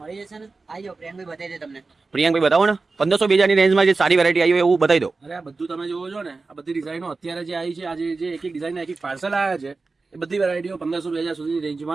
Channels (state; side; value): quieter; left; 3.9 dB